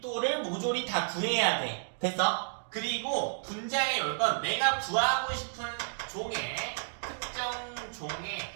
모조리 다 구해야 돼. 됐어? 그리고 분자에 올 건 내가 구하고 싶은 특정 종의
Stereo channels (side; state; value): left; silent; digital silence